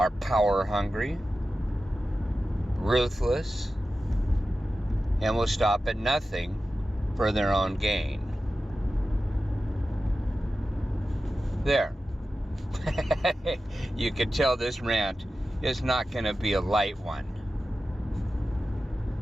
power hungry, ruthless, and will stop at nothing for their own gain. There. You can tell this rant is not going to be a light one.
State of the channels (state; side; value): normal; both; correlation 0.93